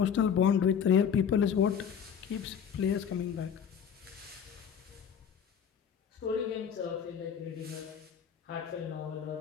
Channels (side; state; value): right; quieter; 7.8 dB